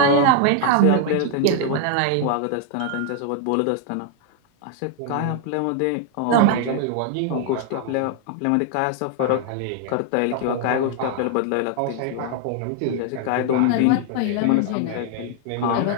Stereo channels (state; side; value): different; both; correlation 0.00